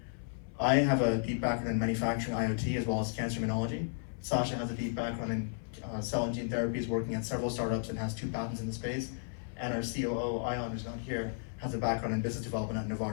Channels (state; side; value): silent; right; 55 dB below the other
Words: I have a deep background in manufacturing IoT as well as cancer immunology. Sasha has a deep background in cell and gene therapies, working at several startups and has 2 patents in the space. And our COO, Ion, who's not here, has a background in business development at